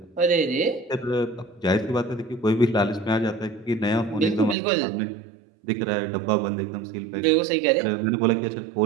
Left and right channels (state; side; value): drops out; left; at 4.5 s